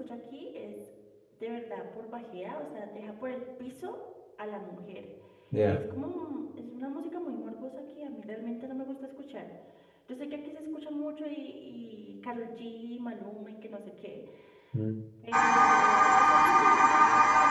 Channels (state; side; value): identical; both; correlation 1.00